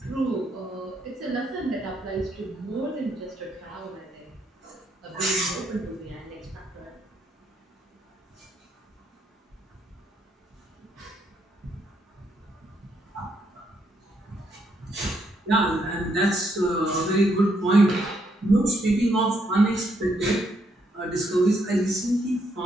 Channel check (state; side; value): normal; both; correlation 0.75